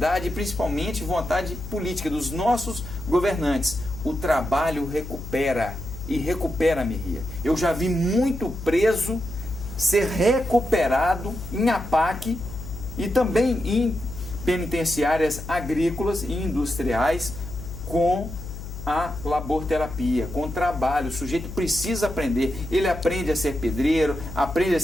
principalmente vontade política dos nossos governantes. O trabalho recupera, e recupera, Merria. Eu já vi muito preso ser recuperado em APAC e também em penitenciárias agrícolas e industriais com a laborterapia, com trabalho. O sujeito precisa aprender. Ele aprende a ser pedreiro, aprende a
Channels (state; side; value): noise; left; hum, 10 dB below the sound